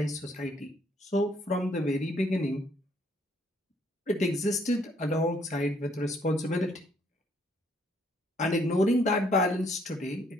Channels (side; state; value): both; normal; correlation 0.67